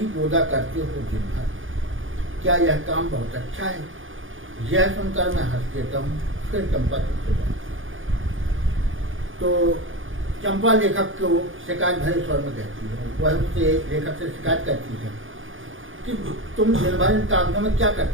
बोदा करते हो दिन भर, क्या यह काम बहुत अच्छा है? यह सुनकर मैं हंस देता हूँ। फिर चंपा चुप हो जाती। तो चंपा लेखक को शिकायत भरे स्वर में कहती है, वह उससे लेखक से शिकायत करती है कि तुम दिन भर इन कागजों में क्या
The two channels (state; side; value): late; left; 0.58 ms